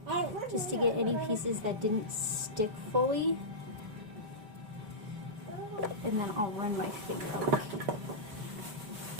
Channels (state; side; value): late; left; 5.1 ms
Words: just to get any pieces that didn't stick fully, and then I'll run my finger over.